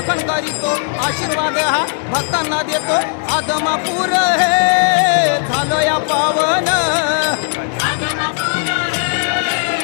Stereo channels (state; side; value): silent; right; 69 dB below the other